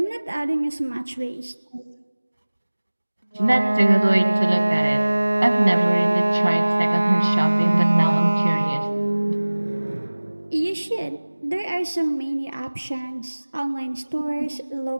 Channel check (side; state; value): both; inverted; correlation -1.00